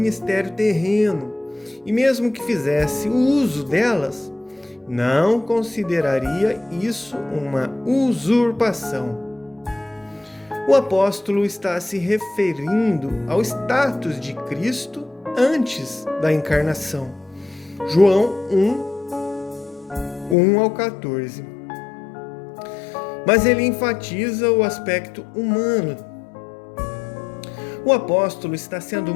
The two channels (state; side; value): drops out; right; at 20.4 s